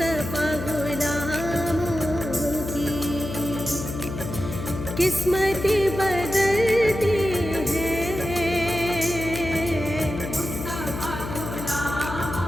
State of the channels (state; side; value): noise; left; hum, 7 dB below the sound